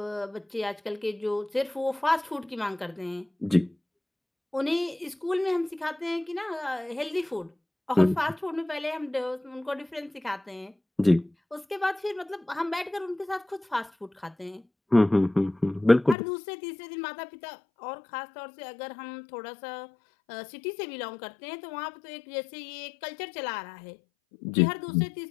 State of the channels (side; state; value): right; drops out; at 16.2 s